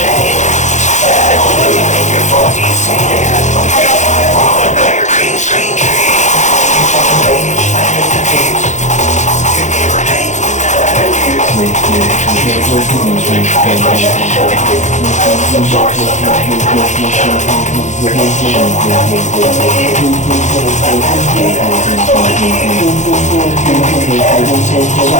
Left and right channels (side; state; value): right; late; 0.35 ms